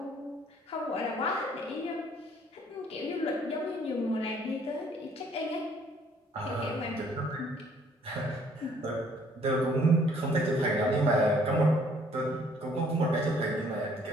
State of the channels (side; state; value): both; normal; correlation 0.61